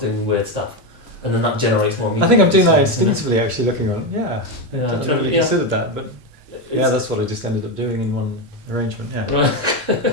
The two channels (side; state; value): both; normal; correlation 0.12